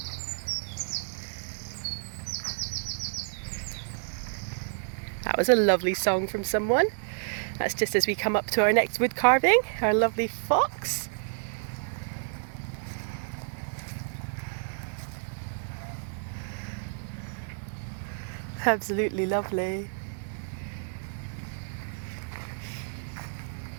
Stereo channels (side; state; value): left; silent; digital silence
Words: That was a lovely song from someone. That's just as we come up to our next wood carving, our lovely fox. Absolutely lovely.